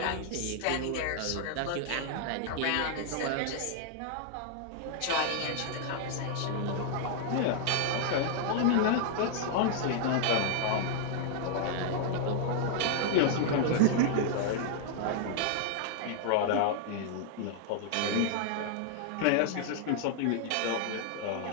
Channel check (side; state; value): both; different; correlation 0.00